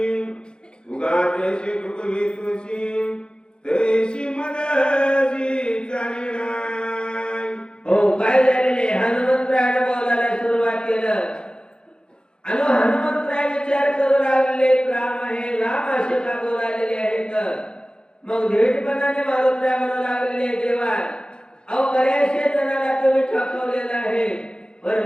उगाते कृपवी तुळशी तैसी मदसी चालिना। हो काय झालेले हनुमंतरायाने बोलायला सुरुवात केलं आणि हनुमंतराय विचार करू लागले राम आहे राम असे का बोलायले आहेत मग धीटपणाने मारुतराय म्हणू लागले देवा अहो बऱ्याचशे जणांना तुम्ही ठकवलेलं आहे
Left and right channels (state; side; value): late; right; 0.049 ms